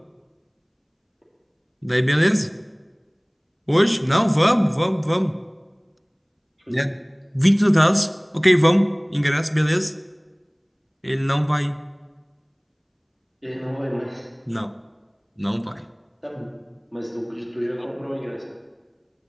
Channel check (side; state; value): both; identical; correlation 1.00